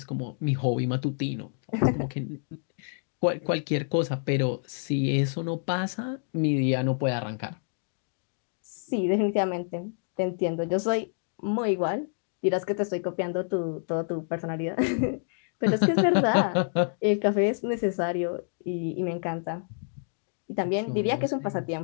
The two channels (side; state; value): right; silent; digital silence